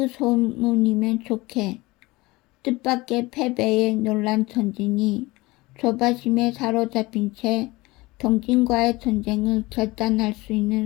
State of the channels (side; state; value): right; quieter; 21.4 dB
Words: 소문이면 좋게. 뜻밖의 패배에 놀란 전진이 조바심에 사로잡힌 채 동진과의 전쟁을 결단할 수